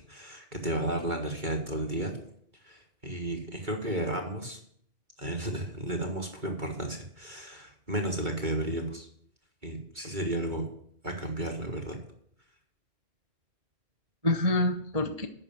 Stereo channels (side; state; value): left; late; 2.2 ms